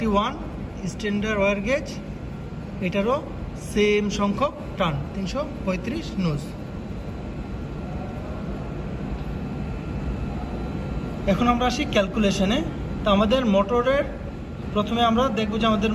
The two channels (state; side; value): identical; both; correlation 1.00